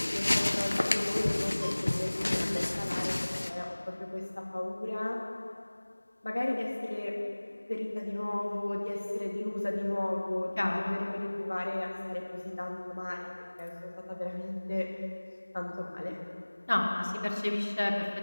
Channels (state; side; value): inverted; both; correlation -1.00